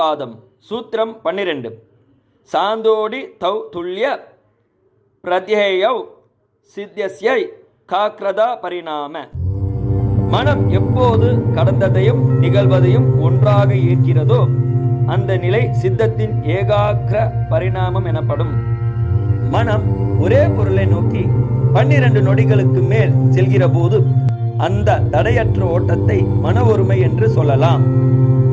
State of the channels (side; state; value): both; identical; correlation 1.00